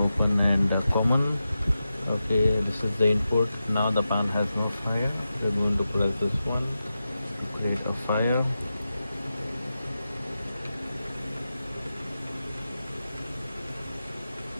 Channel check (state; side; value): inverted; both; correlation -0.91